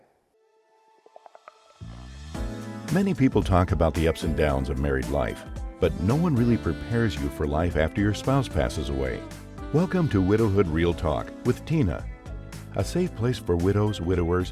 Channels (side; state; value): both; identical; correlation 1.00